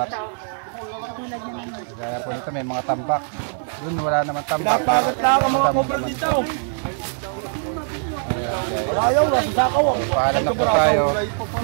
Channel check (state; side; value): silent; left; digital silence